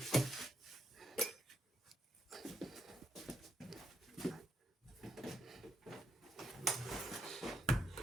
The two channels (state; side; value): normal; both; correlation 0.76